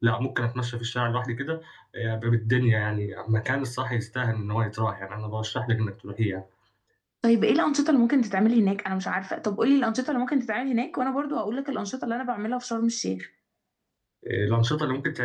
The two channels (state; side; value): identical; both; correlation 1.00